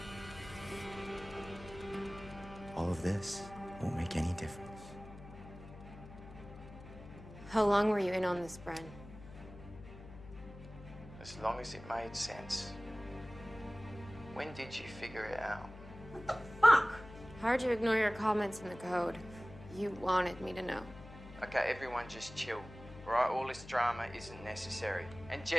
All of this won't make any difference. How long were you in on this, Bren? As long as it made sense. When did you figure it out? Fuck! Hard to ignore your comments in the code. You wanted me to know. Okay, everyone just chill. All right, all this drama isn't necessary. And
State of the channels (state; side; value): noise; left; hum, 15 dB below the sound